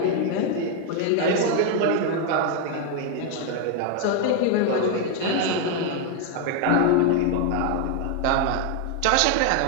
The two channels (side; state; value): both; different; correlation 0.01